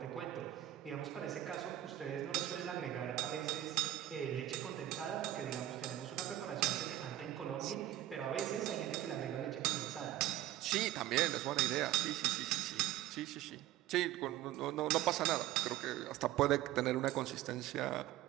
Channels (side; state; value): left; quieter; 13.7 dB